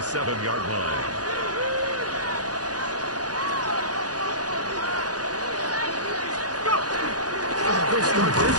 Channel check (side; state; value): left; late; 0.68 ms